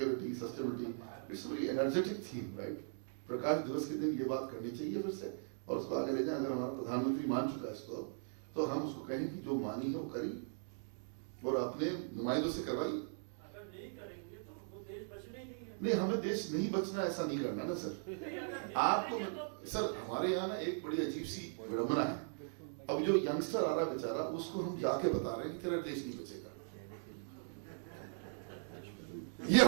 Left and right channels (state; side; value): silent; left; digital silence